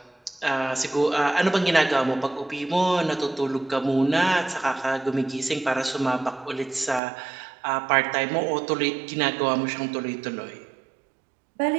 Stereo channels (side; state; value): left; drops out; at 7.0 s